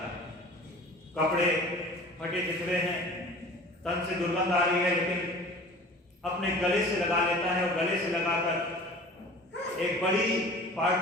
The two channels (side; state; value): both; normal; correlation 0.43